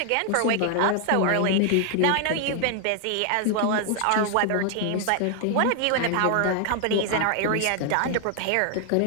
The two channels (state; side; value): different; both; correlation 0.00